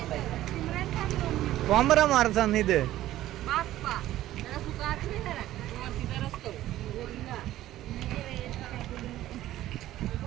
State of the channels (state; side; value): quieter; left; 14.3 dB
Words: कोंबरा मारचा नाही ते.